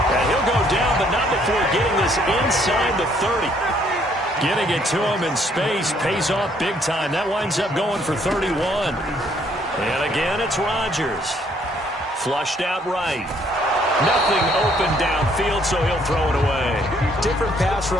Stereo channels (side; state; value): both; normal; correlation 0.66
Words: And he'll go down, but not before getting this inside the 30. Getting it to him in space pays off big time. That winds up going for 31. And again, it's Rodgers. Flushed out right. Nothing open downfield, so he'll throw it away. Different pass